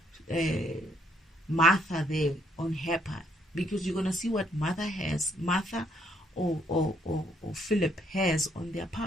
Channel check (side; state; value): both; normal; correlation 0.70